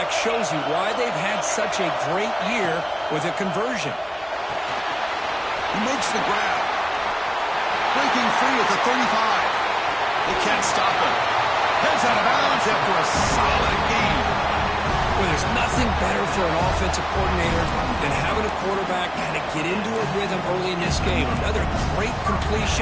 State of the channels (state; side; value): identical; both; correlation 1.00